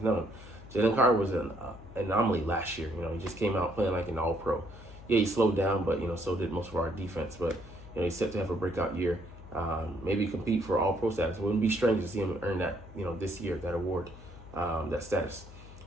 known. Jalen Carter was an anomaly last year. He just came out playing like an all-pro. Yeah, he slowed down, but so did most of our defense. But he's set to have a breakout year. Maybe compete for all-pro status. It wouldn't be strange to see him earn that this year, that award, that status.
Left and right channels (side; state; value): left; noise; hum, 17 dB below the sound